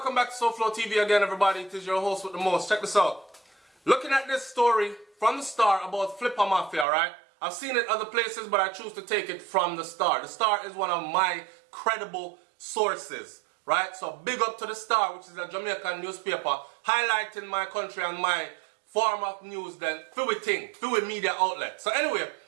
back to SouFLoTV again, everybody. It is your host with the most. Check this out. Looking at this story from the Star about Flippa Mafia, right? I've seen it other places, but I choose to take it from the Star. The Star is one of my credible sources, right? So big up to the Star, which is a Jamaican newspaper, highlighting my country and my form of news then through a media outlet. So anyway,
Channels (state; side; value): drops out; left; at 6.9 s